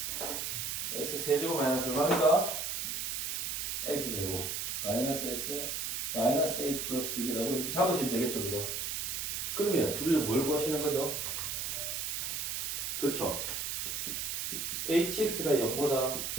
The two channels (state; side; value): noise; right; hiss, 2 dB below the sound